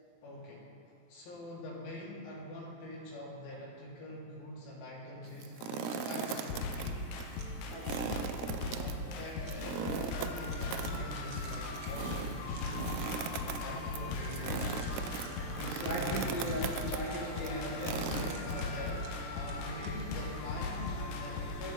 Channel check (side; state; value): right; late; 17 ms